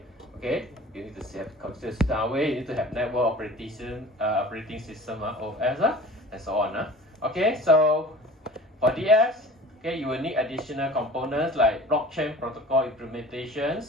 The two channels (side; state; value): both; normal; correlation 0.42